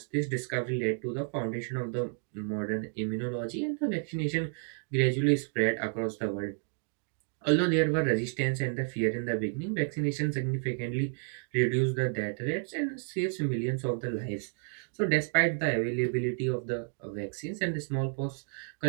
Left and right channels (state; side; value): silent; left; 57 dB below the other